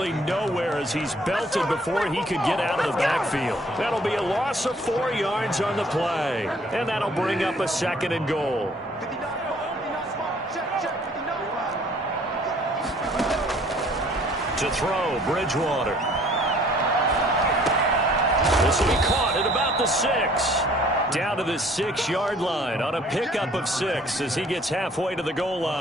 nowhere as he's belted before he could get out of the backfield. That'll be a loss of 4 yards on the play. And that'll bring up a 2nd and goal. To throw, Bridgewater. This will be caught at about the 6. Down to the 6-yard line on a pickup of 6 as he gets halfway to the goal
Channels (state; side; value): normal; both; correlation 0.57